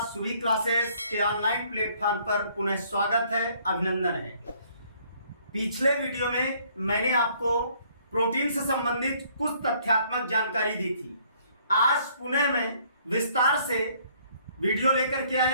सुभी क्लासेस के ऑनलाइन प्लेटफॉर्म पर पुनः स्वागत है, अभिनंदन है। पिछले वीडियो में मैंने आपको प्रोटीन से संबंधित कुछ तथ्यात्मक जानकारी दी थी। आज पुनः मैं विस्तार से वीडियो लेकर के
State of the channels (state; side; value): inverted; both; correlation -0.62